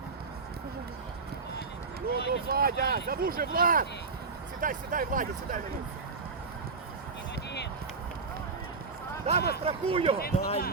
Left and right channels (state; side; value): quieter; left; 4.4 dB